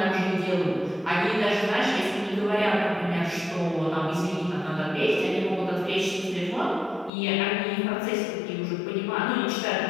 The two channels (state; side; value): drops out; right; at 7.1 s